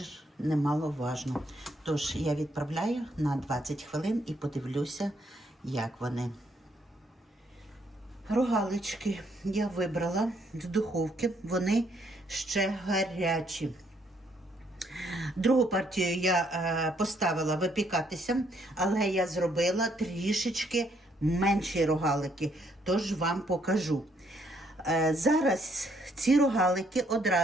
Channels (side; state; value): both; normal; correlation 0.70